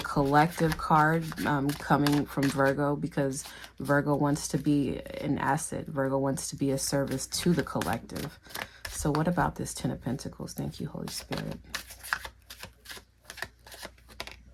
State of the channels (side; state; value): both; identical; correlation 1.00